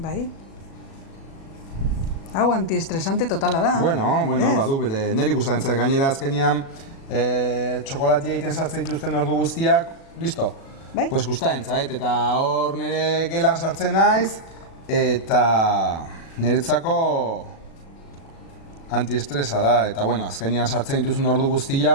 Bai. Hau antiestresante totala da. Bueno, Ez? badu, bere niri gustatzen zait gainera azkenean txokolatia egiten sartzen dituzten ordu guztiak, listo. Bai. Pues gustatzen zait, eta hor nire gelan sartzen naiz, eta niretzako antiestresa da, eta bueno, azkenean sartzen dituzun ordu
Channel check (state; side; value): late; right; 37 ms